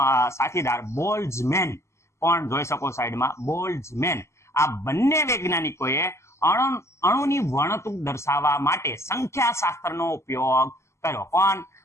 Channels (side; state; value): right; late; 0.13 ms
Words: સાથીદાર બોલ્ટ્ઝમેન પણ જોઈ શકો સાઈડમાં, બોલ્ટ્ઝમેન. આ બંને વૈજ્ઞાનિકોએ અણુની વર્ણતુક દર્શાવવા માટે સંખ્યાશાસ્ત્રનો ઉપયોગ કર્યો. કોણ